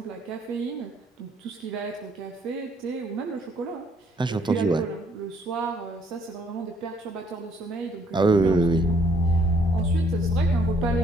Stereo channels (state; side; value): normal; both; correlation 0.66